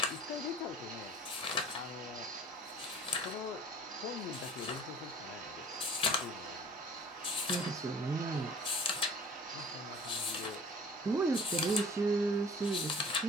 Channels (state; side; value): normal; both; correlation 0.47